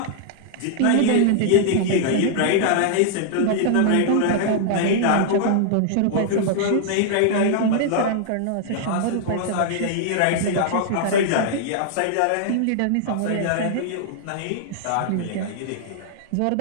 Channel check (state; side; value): different; both; correlation -0.01